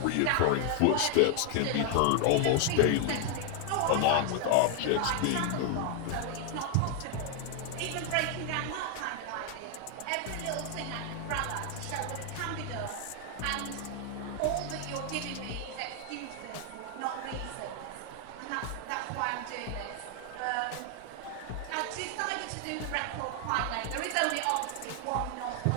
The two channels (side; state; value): both; different; correlation 0.00